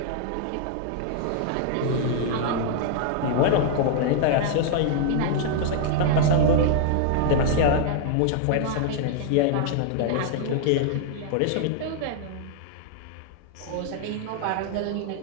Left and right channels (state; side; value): different; both; correlation -0.01